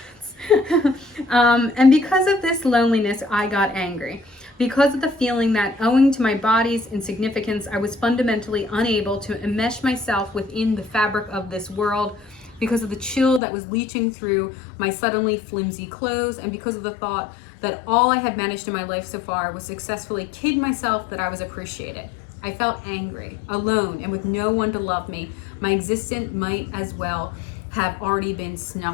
And because of this loneliness, I got angry. Because of the feeling that, owing to my body's insignificance, I was fundamentally unable to enmesh myself within the fabric of this world, because of the chill that was leaching through my suddenly flimsy clothes, and because of the thought that all I had managed in my life so far was successfully kid myself that I was appreciated. I felt angry, alone, and with no one to love me. My existence might as well have already been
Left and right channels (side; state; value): right; drops out; at 13.4 s